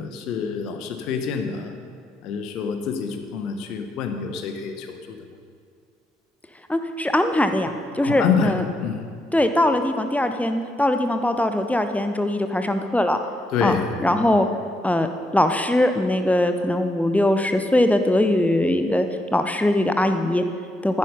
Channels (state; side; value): normal; both; correlation 0.80